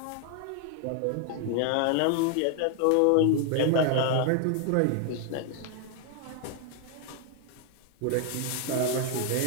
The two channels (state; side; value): different; both; correlation 0.00